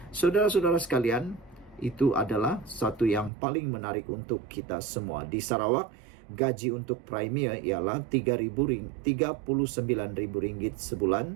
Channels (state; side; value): drops out; left; at 3.3 s